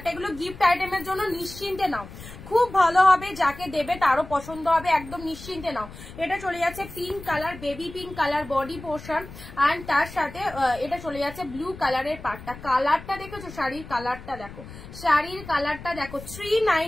এগুলো গিফট আইটেমের জন্য নিশ্চিন্তে নাও, খুব ভালো হবে, যাকে দেবে তারও পছন্দ হবে, একদম নিশ্চিন্তে নাও। এটা চলে যাচ্ছে pink colour, baby pink colour body portion, and তার সাথে এটা চলে যাচ্ছে ব্লু কালারের পাটটা। কালারটা দেখেছো, শাড়ির কালারটা দেখো, শাড়ির কালারটা দেখো,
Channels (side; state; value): left; noise; rumble, 15 dB below the sound